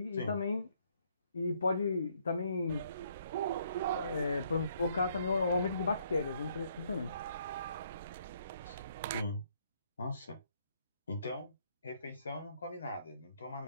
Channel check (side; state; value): both; inverted; correlation -0.69